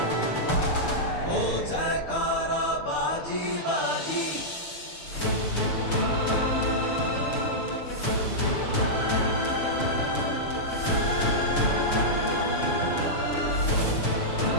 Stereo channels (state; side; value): late; right; 6.8 ms